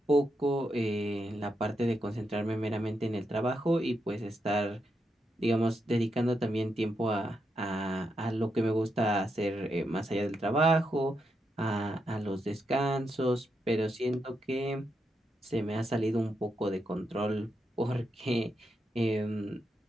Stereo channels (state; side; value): normal; both; correlation 0.83